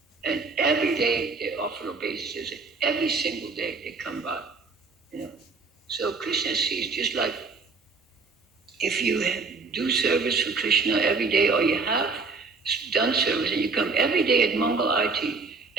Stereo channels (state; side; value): quieter; left; 4.3 dB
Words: and every day they offer obeisances. Every single day they come by, So Krishna sees, just like if you do service for Krishna every day, or you have done service, and you come every day at Mangal Arati,